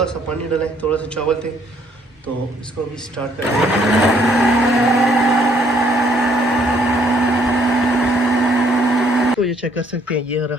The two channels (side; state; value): both; normal; correlation 0.66